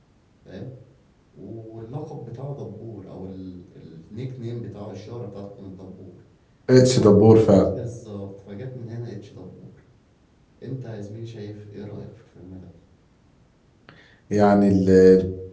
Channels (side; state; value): both; identical; correlation 1.00